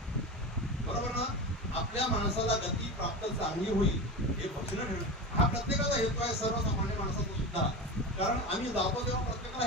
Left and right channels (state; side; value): normal; both; correlation 0.25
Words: बरोबर ना? आपल्या माणसाला गती प्राप्त चांगली होईल हे भजन ठेवणं हा प्रत्येकाचा हेतू आहे, सर्वसामान्य माणसाचा सुद्धा. कारण आम्ही जातो तेव्हा प्रत्येकाला